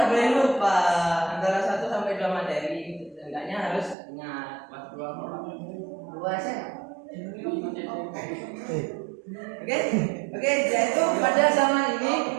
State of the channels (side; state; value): left; drops out; at 4.0 s